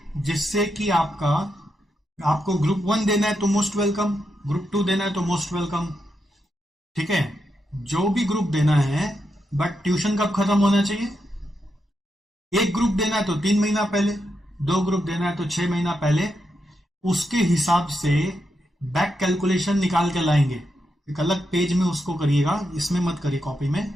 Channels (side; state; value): both; normal; correlation 0.84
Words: जिससे कि आपको ग्रुप 1 देना है तो मोस्ट वेलकम, ग्रुप 2 देना है तो मोस्ट वेलकम, ठीक है, जो भी ग्रुप देना है। बट ट्यूशन कब खत्म होना चाहिए, एक ग्रुप देना है तो 3 महीना पहले, 2 ग्रुप देना है तो 6 महीना पहले। उसके हिसाब से बैक कैलकुलेशन निकाल के लाएंगे, एक अलग पेज में उसको करिएगा, इसमें मत करिए कॉपी में,